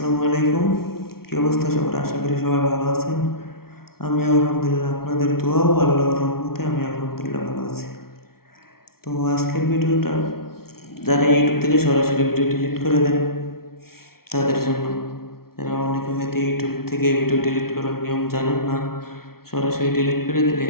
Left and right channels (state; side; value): late; right; 0.94 ms